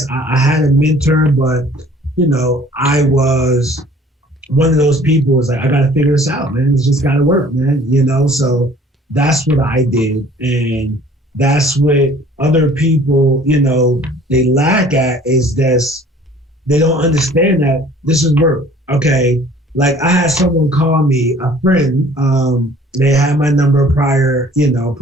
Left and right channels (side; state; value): both; normal; correlation 0.52